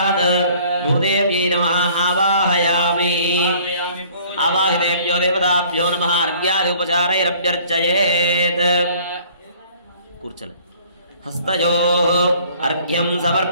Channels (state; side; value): inverted; both; correlation -0.54